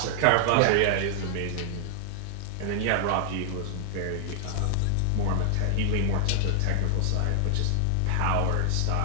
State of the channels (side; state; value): both; different; correlation 0.00